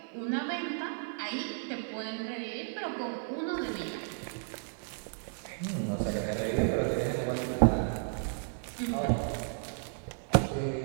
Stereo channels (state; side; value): silent; left; digital silence